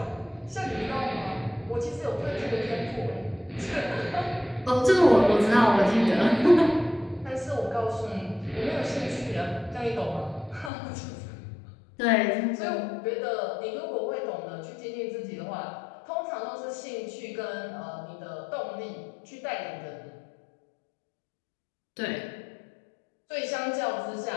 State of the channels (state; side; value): drops out; right; at 10.7 s